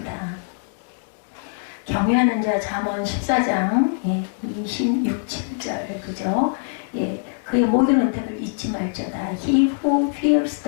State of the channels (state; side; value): silent; right; 61 dB below the other